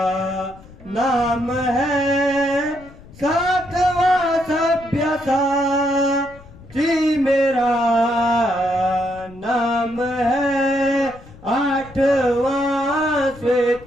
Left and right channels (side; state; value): left; noise; rumble, 21 dB below the sound